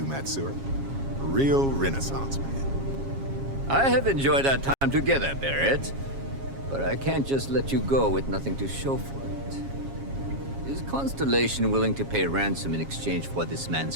Matsura. A real Renaissance man. I have enjoyed our time together, Barrett. But I can't just let you go with nothing to show for it. Is Constellation willing to pay ransom in exchange for this man's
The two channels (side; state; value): left; late; 7.3 ms